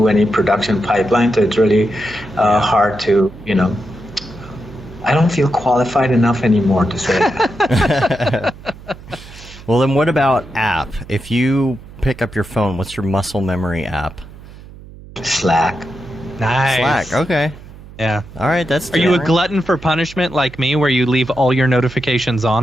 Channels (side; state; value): right; noise; hum, 18 dB below the sound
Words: any production pipeline, so it's really hard to I don't feel qualified enough anymore to say that. Well, then what about app? If you pick up your phone, what's your muscle memory app? Slack. Nice. Slack, okay. Yeah. All right, that's Are you a glutton for punishment like me, where you leave all your notifications